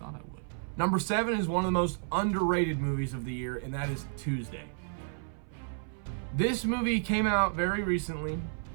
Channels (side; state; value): left; silent; 56 dB below the other